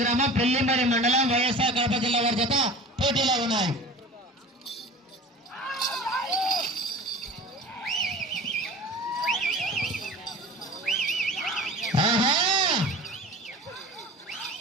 గ్రామం పెళ్లిమరి మండలం వైఎస్ఆర్ కడప జిల్లా వారి జత పోటీలో ఉన్నాయి.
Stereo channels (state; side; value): normal; both; correlation 0.38